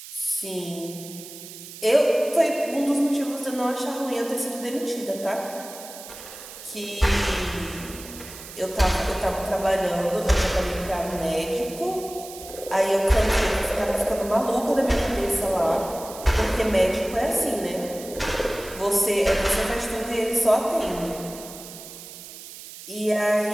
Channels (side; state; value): right; noise; hiss, 14 dB below the sound